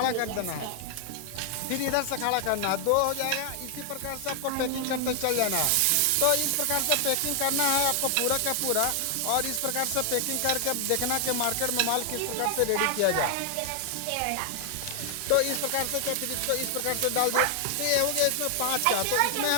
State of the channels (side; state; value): both; different; correlation 0.00